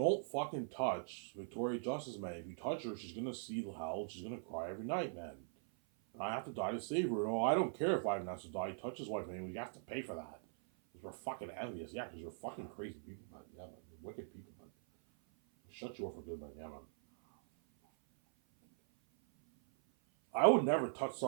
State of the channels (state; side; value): silent; left; 50 dB below the other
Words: fucking touch Victoria Justice, man. If you touch her, she's gonna see the hell. She's gonna cry every night, man. And I have to die to save her. No, I don't care if Ivan has to die. Touch his wife, man. We have to pay for that. Because we're fucking envious. Yeah, because you're fucking crazy people, man. Yeah, man. You're wicked people, man. Shut you up for good, man. Yeah, man. I would never touch